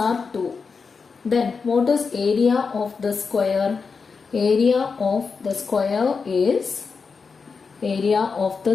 2. Then what is area of the square? Area of the square is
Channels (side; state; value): right; quieter; 5.1 dB